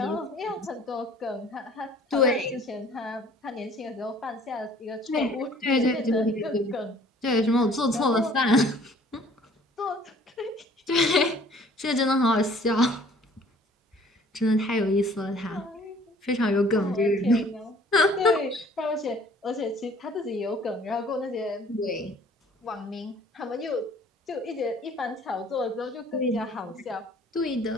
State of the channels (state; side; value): normal; both; correlation 0.54